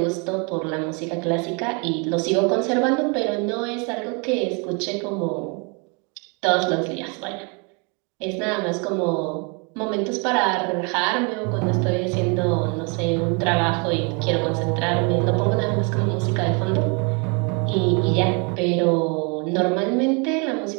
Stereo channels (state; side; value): quieter; left; 33.6 dB